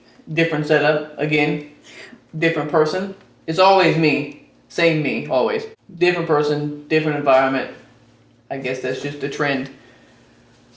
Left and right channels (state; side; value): identical; both; correlation 1.00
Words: different setup again, different person. It's always me, same me, always. Different person, different environment. I guess that's just the trend.